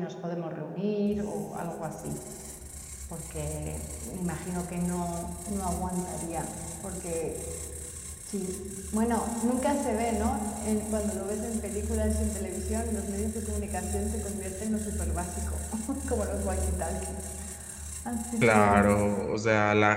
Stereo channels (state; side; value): identical; both; correlation 1.00